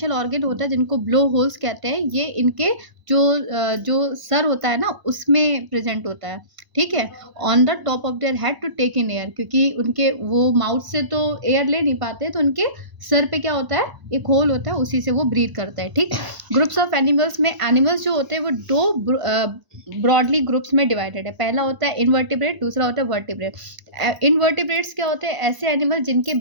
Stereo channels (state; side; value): late; left; 1.0 ms